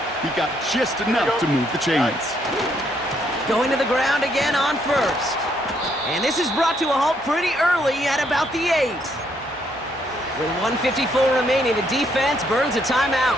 He got just enough to move the chains. Going to the ground again on 1st. And this is brought to a halt pretty early at about the 8. With 1:54 remaining, the defense burns a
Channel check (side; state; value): both; normal; correlation 0.72